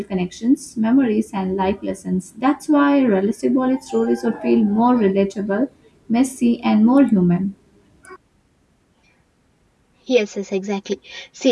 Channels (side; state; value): both; identical; correlation 1.00